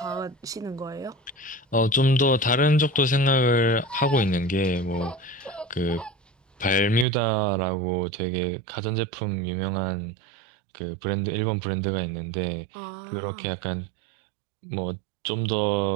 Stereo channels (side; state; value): left; drops out; at 7.1 s